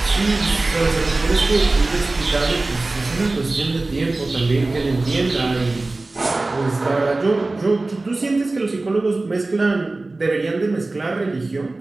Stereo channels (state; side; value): quieter; left; 3.2 dB